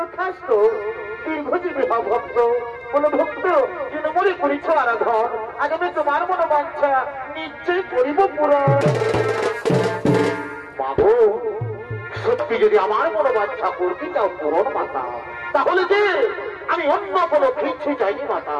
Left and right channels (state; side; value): identical; both; correlation 1.00